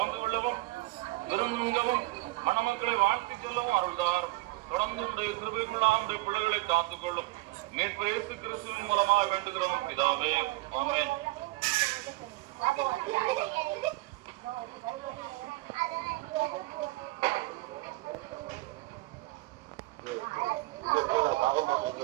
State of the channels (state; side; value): quieter; left; 21.2 dB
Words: கொள்ளவும் விருந்துகவும் மணமக்களை வாழ்த்திக் கொள்ளவும் அருள்தார். தொடர்ந்து உடைய கிருபைக்குள்ளாக உடைய பிள்ளைகளை காத்துக்கொள்ளும். மீட்பர் இயேசு கிறிஸ்துவின் மூலமாக வேண்டுகிறோம் பிதாவே, ஆமென்.